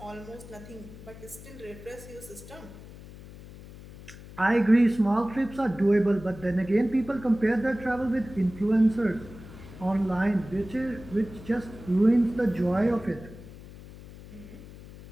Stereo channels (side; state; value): left; noise; hum, 17 dB below the sound